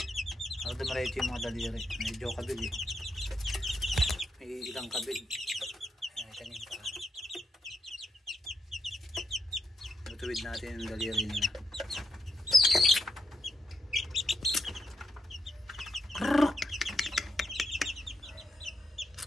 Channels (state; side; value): normal; both; correlation 0.79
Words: para dumalike yung mga daliri. Medyo kabig eh, may ilang kabig. Ayan, ito yung paa. Tutuwid natin yung daliri nila.